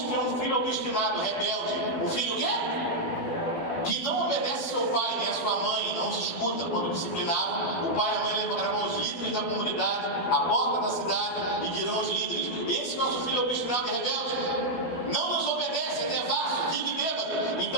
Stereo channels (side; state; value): right; late; 12 ms